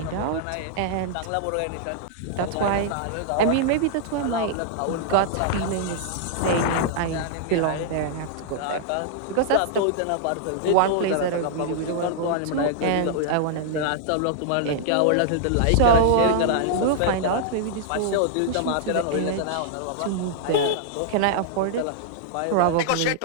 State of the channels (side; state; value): both; different; correlation -0.01